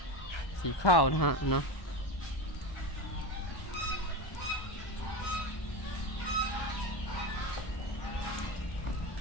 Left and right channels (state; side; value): late; right; 1.1 ms